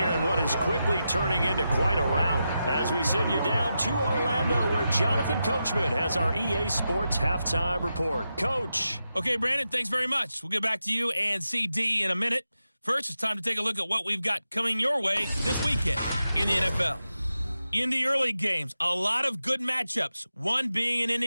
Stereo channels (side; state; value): both; inverted; correlation -0.89